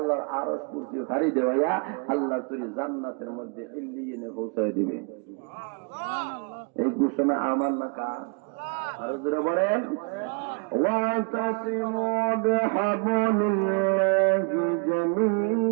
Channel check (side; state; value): left; quieter; 35.7 dB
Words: আরশ কুরসি ভারী দেওয়াইয়া আল্লাহ তুই জান্নাতের মধ্যে ইল্লিয়িনে পৌঁছায় দিবে এই ঘোষণা আমার না কার আর জোরে বলেন ওয়াতাসিমু বিহাবলিল্লাহি